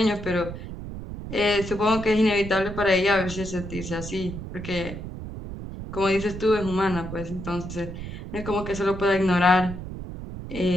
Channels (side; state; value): right; noise; rumble, 9 dB below the sound